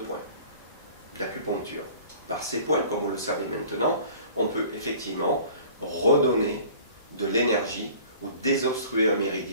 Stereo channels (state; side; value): inverted; both; correlation -0.47